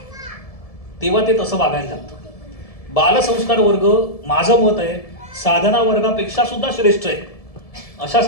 तेव्हा ते तसं वागायला लागतं. बालसंस्कार वर्ग माझं मत आहे साधना वर्गापेक्षा सुद्धा श्रेष्ठ आहे.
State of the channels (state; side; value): late; right; 1.7 ms